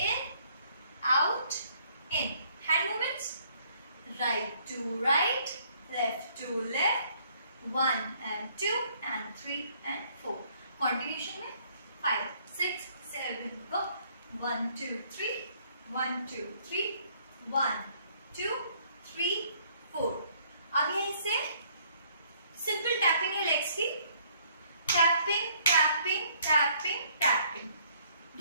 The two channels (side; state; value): both; inverted; correlation -0.64